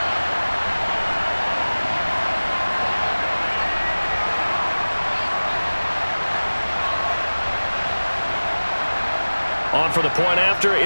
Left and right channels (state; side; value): inverted; both; correlation -1.00